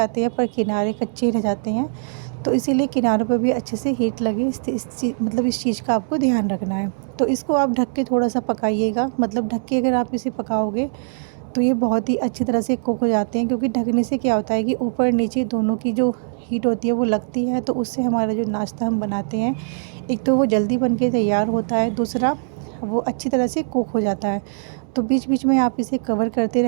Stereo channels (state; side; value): silent; left; digital silence